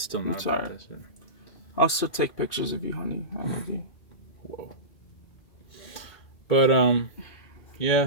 not about that shit. I'll still take pictures of you, honey. I love you. Whoa. But, yeah,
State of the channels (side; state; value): right; late; 2.0 ms